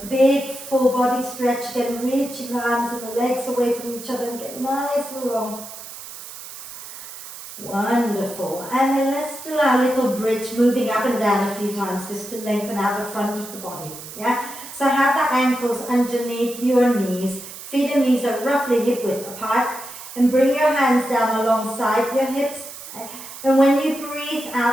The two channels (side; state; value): right; noise; hiss, 13 dB below the sound